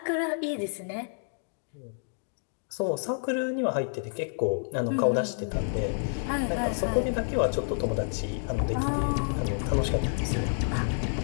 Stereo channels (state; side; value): silent; right; digital silence